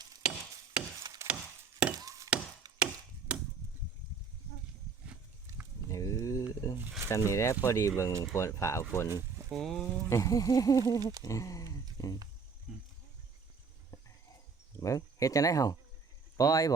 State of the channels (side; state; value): left; quieter; 5.2 dB